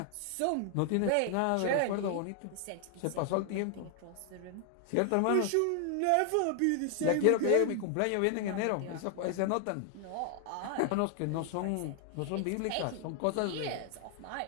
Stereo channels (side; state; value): both; different; correlation 0.00